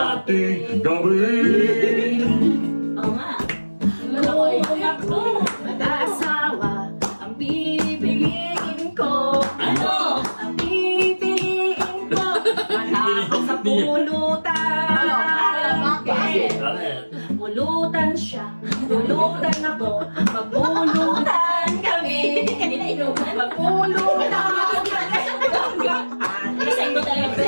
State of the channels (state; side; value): inverted; both; correlation -1.00